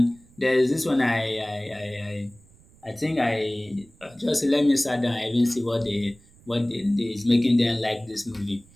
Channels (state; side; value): noise; right; rumble, 27 dB below the sound